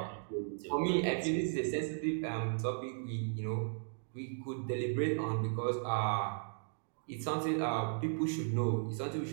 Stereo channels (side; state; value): left; silent; digital silence